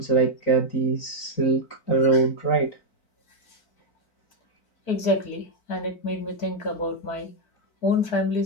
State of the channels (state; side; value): late; right; 4.4 ms